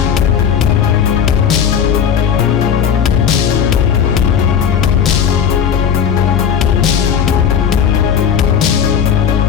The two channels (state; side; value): quieter; right; 7.8 dB